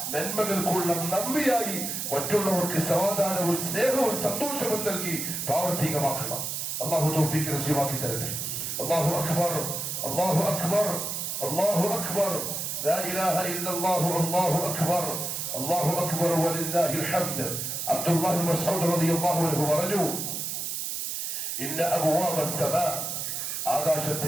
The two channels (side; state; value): right; noise; hiss, 3 dB below the sound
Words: നന്മകൾക്കുള്ള നന്ദിയായി മറ്റുള്ളവർക്ക് സമാധാനവും സ്നേഹവും സന്തോഷവും നൽകി പ്രാവർത്തികമാക്കണം. അല്ലാഹു തൗഫീഖ് നസീബാക്കി തരട്ടെ. അല്ലാഹു അക്ബർ, അല്ലാഹു അക്ബർ, അല്ലാഹു അക്ബർ, ലാ ഇലാഹ ഇല്ലല്ലാഹു, അല്ലാഹു അക്ബർ, അല്ലാഹു അക്ബർ വലില്ലാഹിൽ ഹംദ്. അബ്ദുല്ലാഹി ഇബ്നു മസ്ഊദ് റളിയല്ലാഹു അൻഹു പറഞ്ഞു, ഇന്ന അബ്വാബ അസ്സമാ,